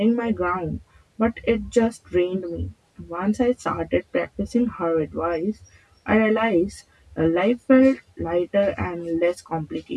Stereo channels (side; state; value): both; identical; correlation 1.00